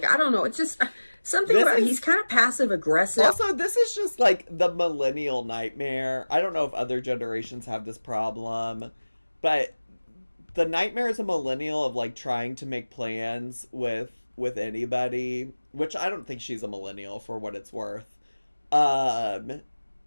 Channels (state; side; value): inverted; both; correlation -1.00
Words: don't know. It's just something about, he's kind of passive aggressive. Also, this is just the millennial nightmare. I don't know if other generations have this problem, but the nightmare as a millennial of trying to make plans with with anybody, which I don't think she's a millennial for what it's worth. I